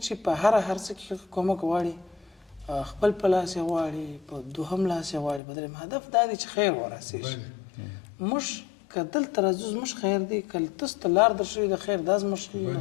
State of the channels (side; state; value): right; drops out; at 5.4 s